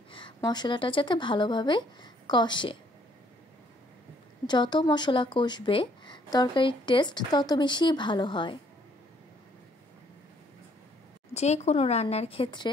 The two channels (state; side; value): normal; both; correlation 0.65